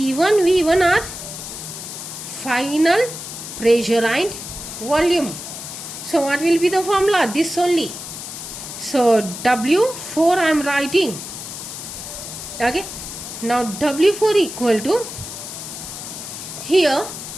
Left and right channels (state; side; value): noise; left; hiss, 9 dB below the sound